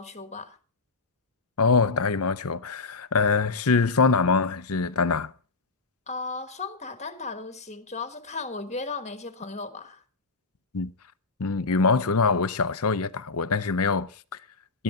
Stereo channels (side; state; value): right; quieter; 4.1 dB